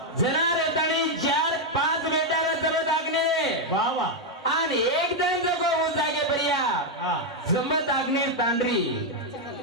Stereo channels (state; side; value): normal; both; correlation 0.01